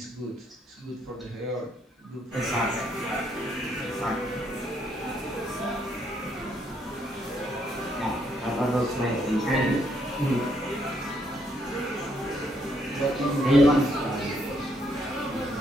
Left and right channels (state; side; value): normal; both; correlation 0.72